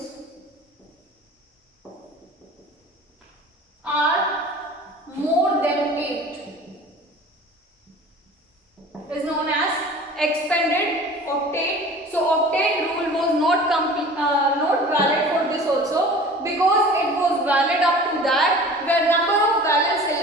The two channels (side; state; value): both; normal; correlation 0.42